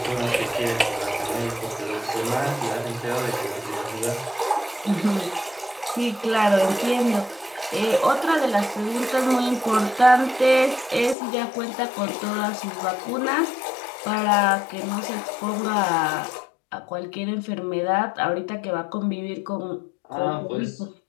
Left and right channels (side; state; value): right; drops out; at 11.2 s